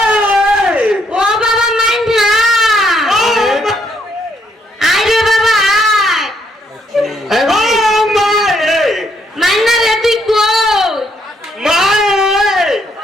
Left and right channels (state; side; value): normal; both; correlation 0.72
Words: ও বাবা মান্না, আয় রে বাবা আয়। মান্না রে তুই কই?